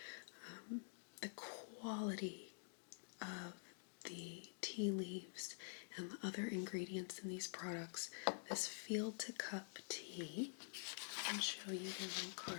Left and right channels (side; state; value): right; silent; digital silence